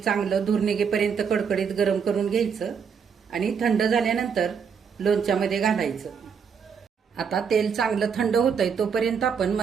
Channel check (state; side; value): quieter; left; 6.6 dB